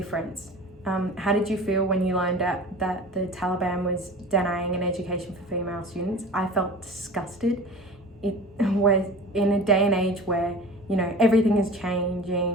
How did you feel when you learned that the Taliban was denying an education for female students? I felt disgusted. It was in a day and age where, everything is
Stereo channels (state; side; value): normal; both; correlation 0.37